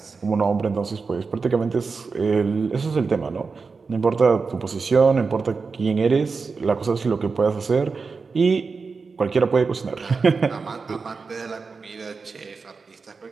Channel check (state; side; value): quieter; left; 4.7 dB